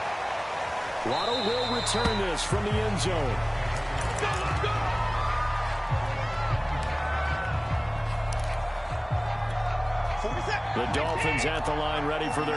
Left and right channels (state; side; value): identical; both; correlation 1.00